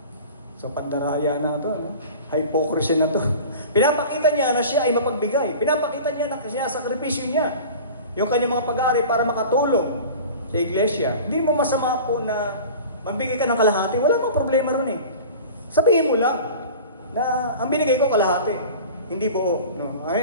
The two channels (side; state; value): both; inverted; correlation -0.38